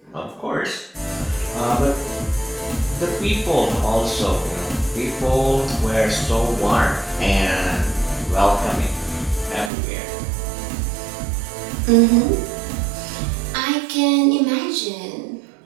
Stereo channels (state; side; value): drops out; left; at 9.7 s